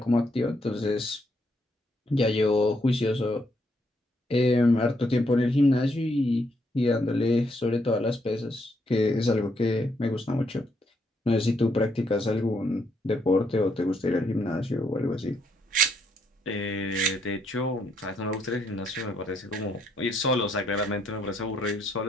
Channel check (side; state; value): both; normal; correlation 0.74